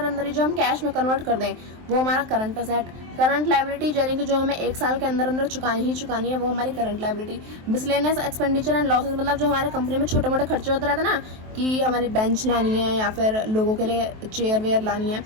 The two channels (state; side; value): late; left; 23 ms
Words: अंदर ही जो हम कैश में कन्वर्ट कर दें वो हमारा करंट असेट। करंट लायबिलिटी यानी कि जो हमें एक साल के अंदर अंदर चुकानी है वो हमारी current liability. Miscellaneous expenditure and losses, मतलब जो हमारे कंपनी में छोटे मोटे खर्चे होते रहते हैं ना, कि हमारी बेंच लानी है या फिर लोगों के लिए चेयर वेयर लानी है